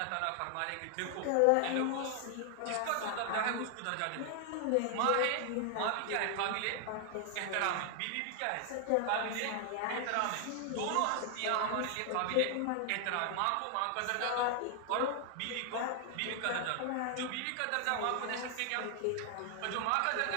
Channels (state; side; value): different; both; correlation 0.00